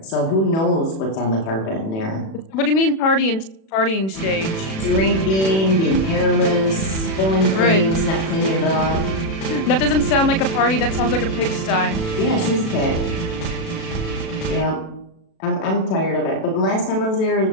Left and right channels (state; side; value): late; right; 36 ms